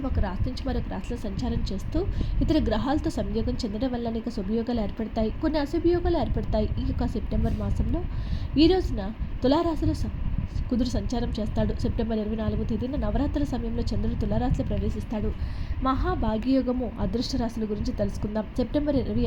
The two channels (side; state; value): both; identical; correlation 1.00